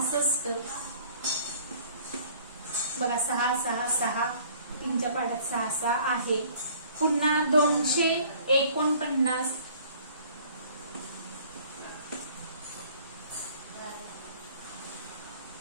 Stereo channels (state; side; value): inverted; both; correlation -0.53